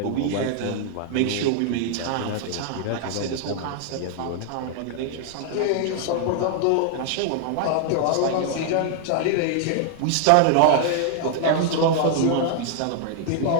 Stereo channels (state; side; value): different; both; correlation 0.00